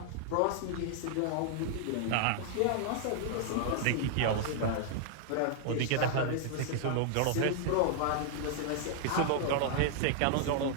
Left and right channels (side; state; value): both; different; correlation -0.01